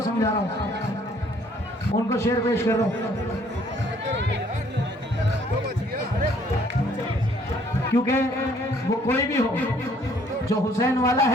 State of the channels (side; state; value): both; normal; correlation 0.62